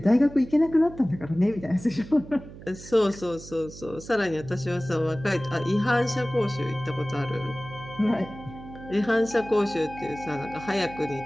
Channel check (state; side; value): noise; right; hum, 16 dB below the sound